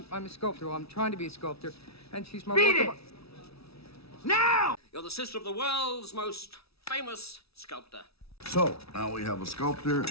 a sculptor. Well, I'm trying to be a sculptor, and she's my Beat it! Now! You're the sister of the world's most famous sculptor. So, now we have a sculptor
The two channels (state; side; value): late; right; 0.77 ms